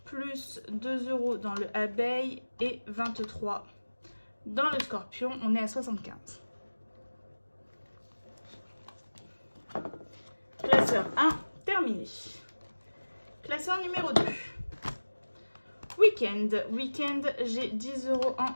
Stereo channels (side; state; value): both; inverted; correlation -1.00